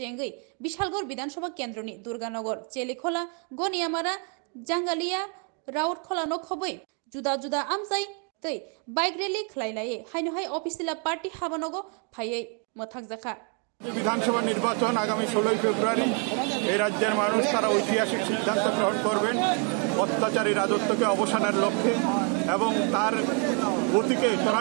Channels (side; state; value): left; quieter; 38.8 dB